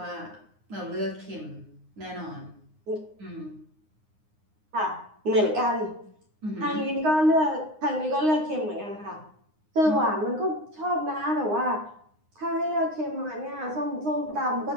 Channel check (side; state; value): left; late; 9.7 ms